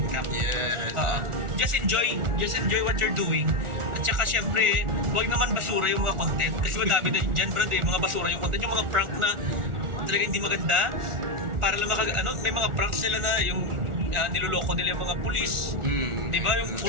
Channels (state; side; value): late; left; 1.4 ms